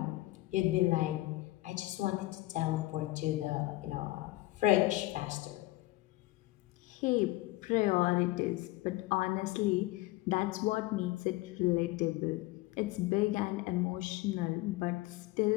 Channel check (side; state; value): right; quieter; 18.8 dB